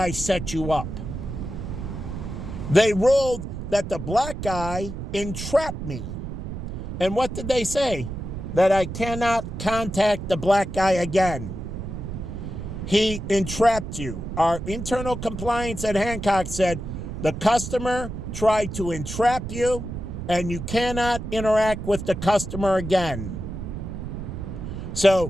set you up. They ruled that the black guy entrapped me. And what did they say? That I cannot contact the black guy again. he entrapped you. Our internal compliance at Hancock said the customer tried to entrap you and you cannot interact with the customer again.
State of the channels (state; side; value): noise; right; rumble, 7 dB below the sound